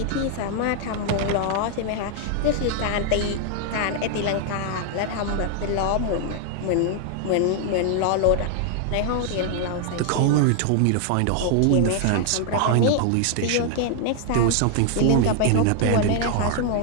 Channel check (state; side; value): different; both; correlation 0.00